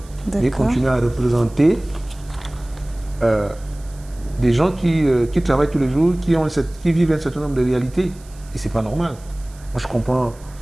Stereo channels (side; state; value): right; noise; hiss, 25 dB below the sound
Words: mais ils continuent à représenter des gens qui travaillent tous les jours, qui vivent un certain nombre de réalités. Et ce n'est pas normal. Moi,